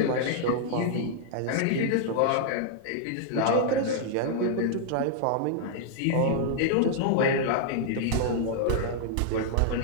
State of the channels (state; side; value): different; both; correlation -0.01